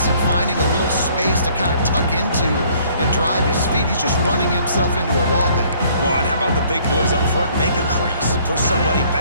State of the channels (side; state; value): both; inverted; correlation -0.60